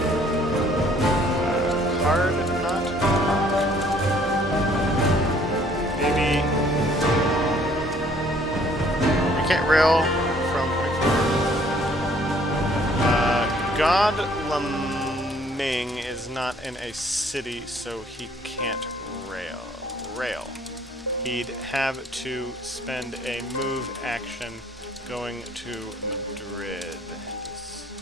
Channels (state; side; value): normal; both; correlation 0.60